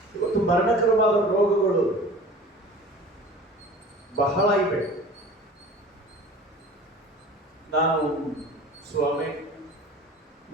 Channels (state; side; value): normal; both; correlation 0.42